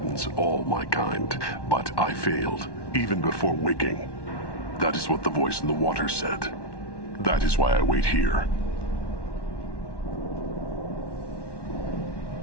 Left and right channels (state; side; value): late; right; 1.1 ms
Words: all my kind. But I failed, even before waking. That is what the voice in the water said. That is why I wait here.